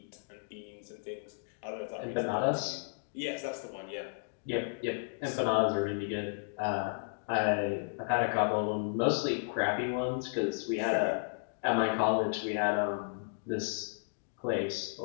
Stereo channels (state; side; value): silent; right; digital silence